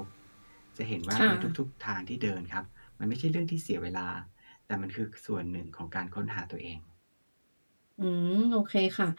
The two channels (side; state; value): both; inverted; correlation -1.00